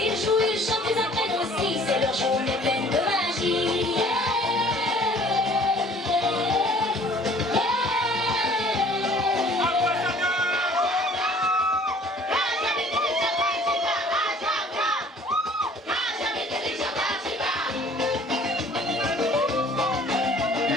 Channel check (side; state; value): both; normal; correlation 0.53